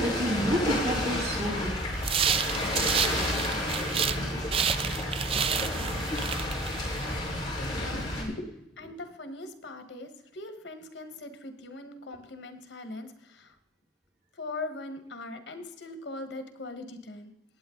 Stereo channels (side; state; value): both; normal; correlation 0.43